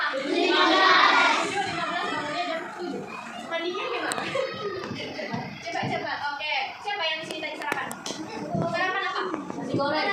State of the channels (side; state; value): both; identical; correlation 1.00